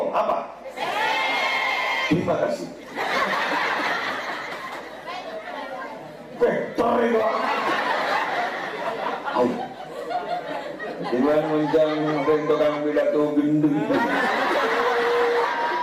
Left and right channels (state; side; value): identical; both; correlation 1.00